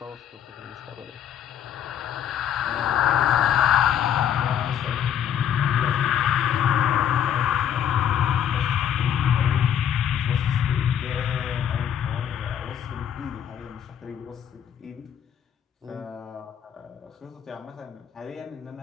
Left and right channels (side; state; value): right; quieter; 9.3 dB